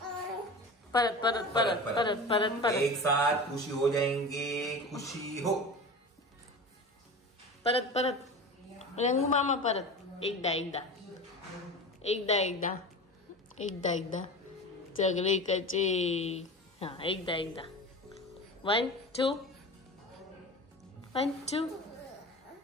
परत परत परत परत परत परत एक साथ खुशी हो जाएंगे. खुशी हो. परत परत रंगू मामा परत. एकदा एकदा एकदा एकदा एकदा एकदा सगळे कचे. हा एकदा एकदा 1 2 1 2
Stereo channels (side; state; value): both; normal; correlation 0.32